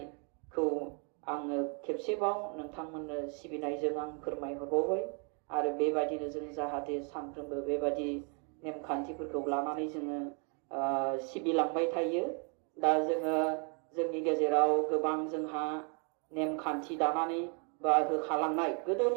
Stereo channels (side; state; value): left; quieter; 38.0 dB